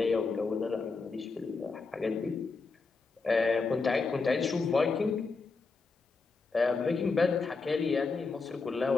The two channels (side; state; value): right; quieter; 4.2 dB